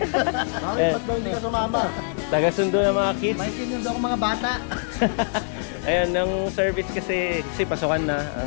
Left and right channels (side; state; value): right; silent; digital silence